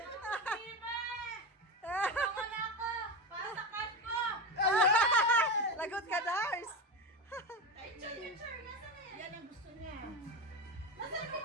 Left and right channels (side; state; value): both; normal; correlation 0.20